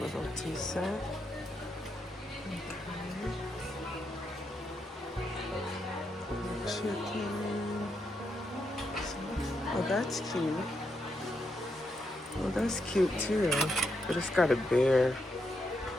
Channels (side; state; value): both; normal; correlation 0.81